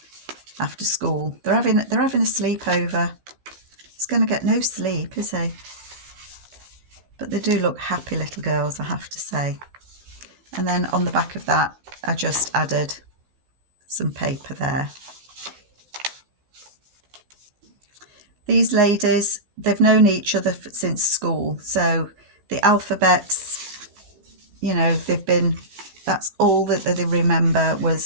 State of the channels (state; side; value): late; left; 16 ms